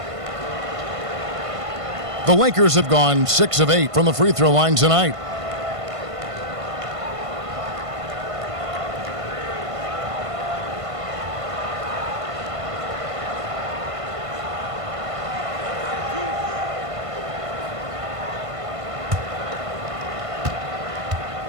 The Lakers have gone 6 of 8 from the free throw line tonight.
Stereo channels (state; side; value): late; left; 1.5 ms